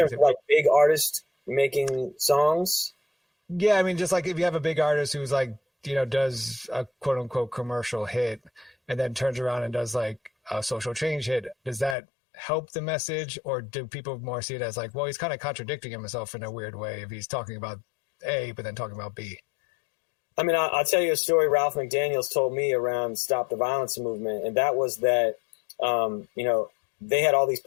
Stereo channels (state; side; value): drops out; right; at 12.0 s